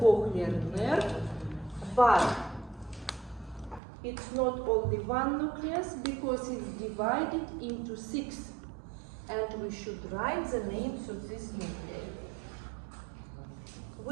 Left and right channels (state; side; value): drops out; left; at 3.8 s